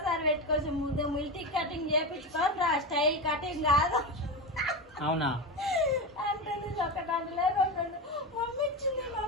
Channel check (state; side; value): normal; both; correlation 0.19